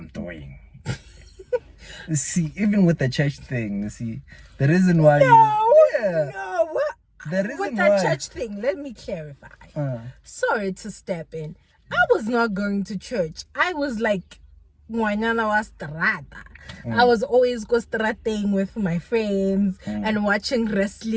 doing. You see, even with the church thing, you see, the reason why No, what? The reason With that why church thing, let me clarify. Sorry to step in. I was not going to church. I was like, ngwanyana wa strata. I was always go strating with my friends and watching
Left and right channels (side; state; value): both; identical; correlation 1.00